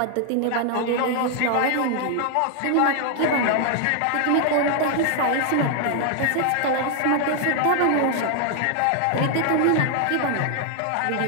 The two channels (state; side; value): different; both; correlation 0.00